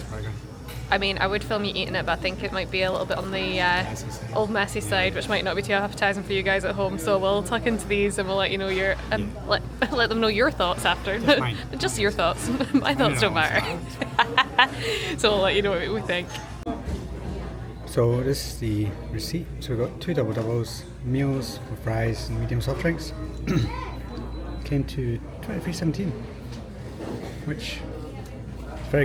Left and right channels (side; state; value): both; identical; correlation 1.00